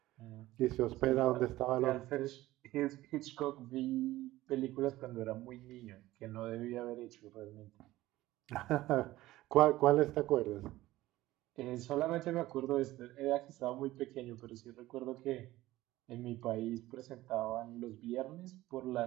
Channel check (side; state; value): left; quieter; 16.7 dB